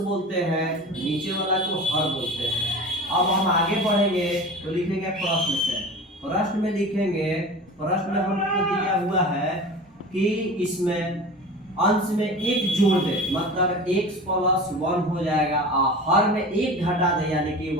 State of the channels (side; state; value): both; normal; correlation 0.35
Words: बोलते हैं, नीचे वाला को हर बोलते हैं। अब हम आगे बढ़ेंगे तो लिखेंगे प्रश्न से। प्रश्न में लिखेंगे, प्रश्न में हमको दिया हुआ है कि इसमें अंश में एक जोड़ दे मतलब x + 1 हो जाएगा और हर में एक घटा दे यानी कि y